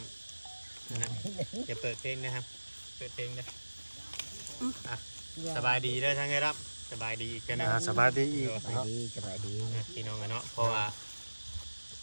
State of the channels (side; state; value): both; inverted; correlation -1.00